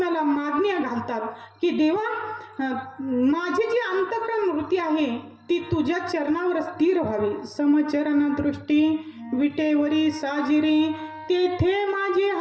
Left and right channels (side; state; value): both; identical; correlation 1.00